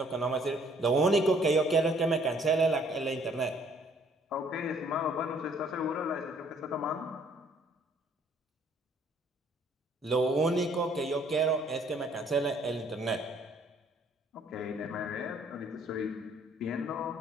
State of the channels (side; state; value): both; normal; correlation 0.61